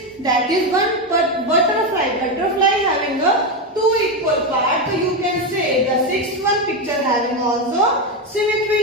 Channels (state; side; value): normal; both; correlation 0.11